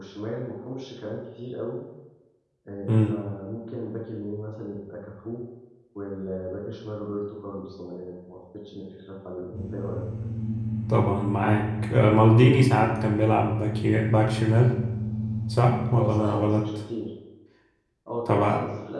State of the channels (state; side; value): identical; both; correlation 1.00